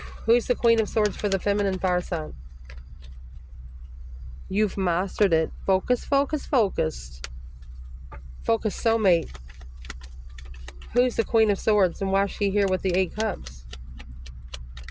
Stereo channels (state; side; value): identical; both; correlation 1.00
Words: Who's the Queen of Swords for the feminine fire sign? You've mastered it. Focus, focus, focused. Focus, soulmate. Who's the Queen of Swords and why is she here with the 8 cups?